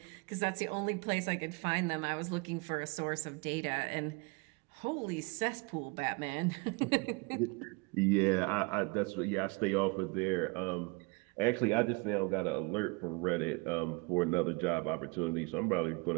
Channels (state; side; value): quieter; left; 30.0 dB